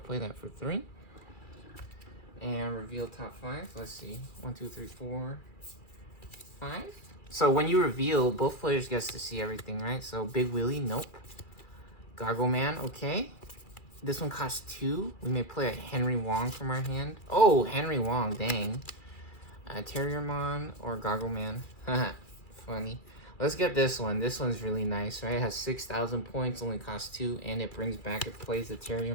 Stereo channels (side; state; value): right; late; 2.4 ms